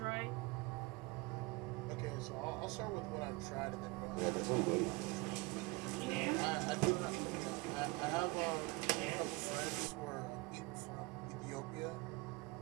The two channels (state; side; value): quieter; left; 25.5 dB